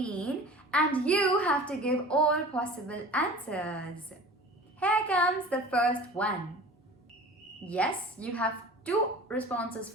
and you have to give all possible answers. Here comes the first one. Yes, you have two responses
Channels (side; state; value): both; normal; correlation 0.40